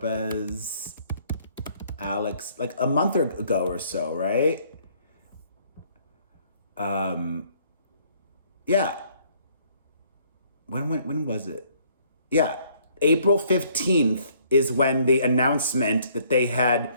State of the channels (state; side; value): inverted; both; correlation -0.63